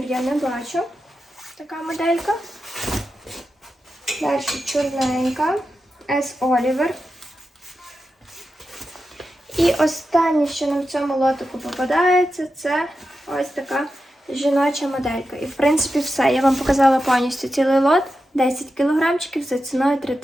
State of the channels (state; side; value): normal; both; correlation 0.90